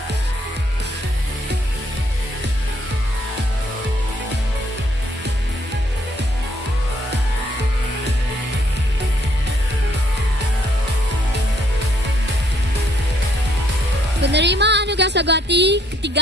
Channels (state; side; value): normal; both; correlation 0.69